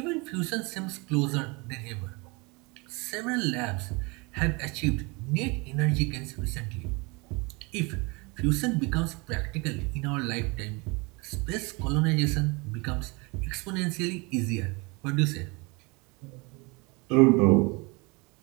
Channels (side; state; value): left; quieter; 27.8 dB